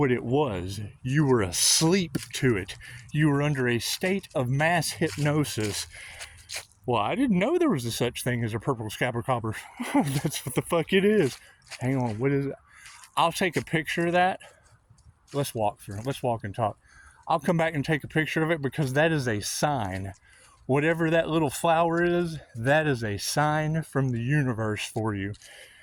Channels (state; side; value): identical; both; correlation 1.00